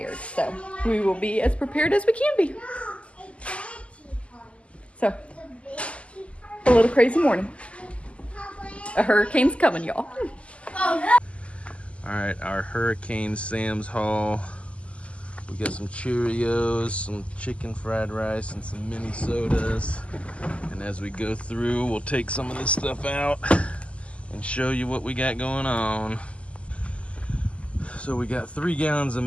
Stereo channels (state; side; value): late; right; 0.059 ms